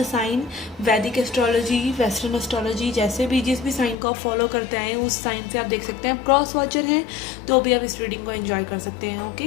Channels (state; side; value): drops out; right; at 4.0 s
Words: साइन, वैदिक एस्ट्रोलॉजी, वेस्टर्न एस्ट्रोलॉजी, जैसे भी जिस भी साइन को आप फॉलो करते हैं उस साइन से आप देख सकते हैं। क्रॉस वॉचर हैं तो भी आप इस रीडिंग को एंजॉय कर सकते हैं।